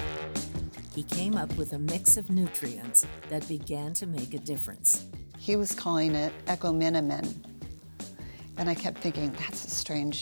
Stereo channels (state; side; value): inverted; both; correlation -1.00